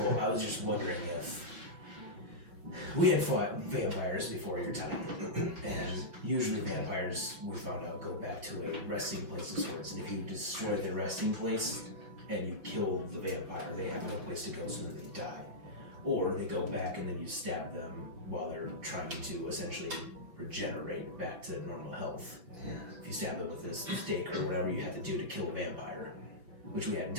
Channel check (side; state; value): left; late; 5.9 ms